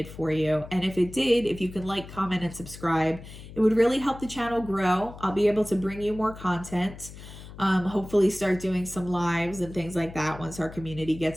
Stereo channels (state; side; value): noise; left; hum, 15 dB below the sound